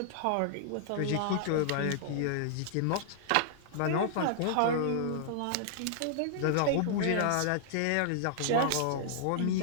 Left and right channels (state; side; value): different; both; correlation -0.01